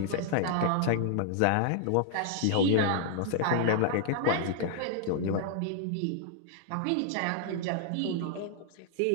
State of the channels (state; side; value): different; both; correlation -0.01